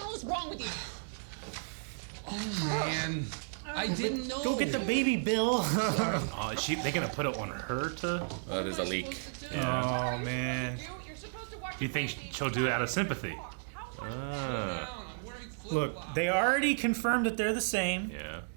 hell is wrong with you? Oh man, I didn't know. Go get the baby, Bill. Oh, is they gonna put it on her to? That is a leak. Oh, man. You're supposed to watch Do you think she'll do it out of sympathy? Look, they already confirmed that they're the same, Yeah.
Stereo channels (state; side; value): silent; left; digital silence